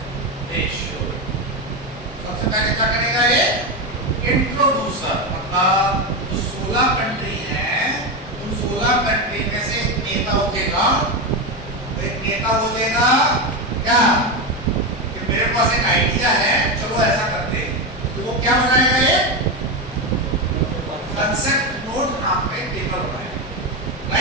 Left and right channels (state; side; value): normal; both; correlation 0.13